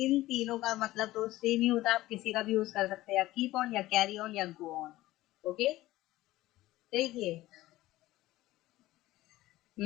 तीनों का मतलब तो सेम ही होता है, आप किसी का भी यूज कर सकते हैं, या कीप ऑन या कैरी ऑन या गो ऑन। ओके, देखिए,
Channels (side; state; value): right; quieter; 16.7 dB